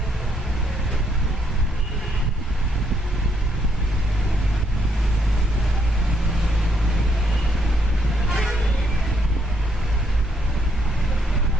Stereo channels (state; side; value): normal; both; correlation 0.73